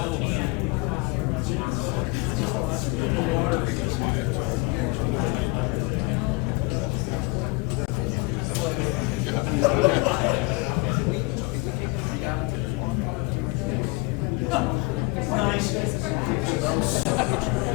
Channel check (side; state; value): right; quieter; 25.5 dB